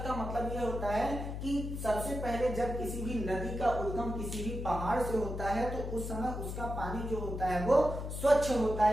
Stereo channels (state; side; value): noise; left; hum, 5 dB below the sound